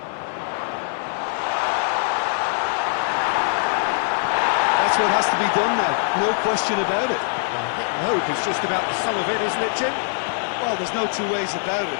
That's what has to be done now, no question about it. Well, hit and hope is just about the sum of it, isn't it, Jim? Well, there's no two ways about it.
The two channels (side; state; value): right; silent; 64 dB below the other